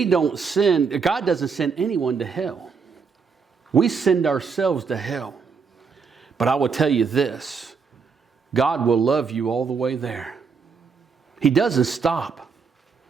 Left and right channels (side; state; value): left; quieter; 5.5 dB